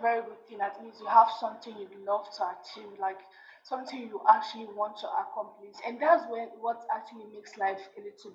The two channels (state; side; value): identical; both; correlation 1.00